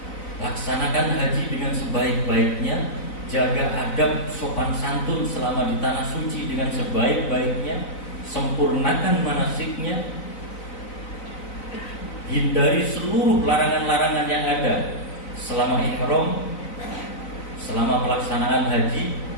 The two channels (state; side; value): late; right; 4.0 ms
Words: Laksanakan haji dengan sebaik-baiknya, jaga adab sopan santun selama di tanah suci dengan sebaik-baiknya, sempurnakan manasiknya, hindari seluruh larangan-larangan yang ada selama ihram, selama pelaksanaan haji,